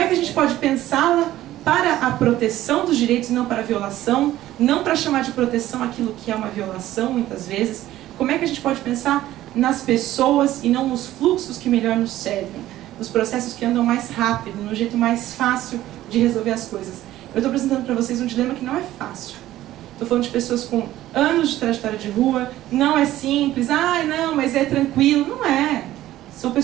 que a gente pode pensá-la para a proteção dos direitos e não para a violação, não para chamar de proteção aquilo que é uma violação, muitas vezes? Como é que a gente pode pensar nas pessoas e não nos fluxos que melhor nos servem, nos processos que andam mais rápido, no jeito mais fácil de resolver as coisas? Eu estou apresentando para vocês um dilema que não é fácil. Estou falando de pessoas com anos de trajetória de rua, não é simples, não, mas é tranquilo. Não é. São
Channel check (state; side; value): quieter; left; 14.4 dB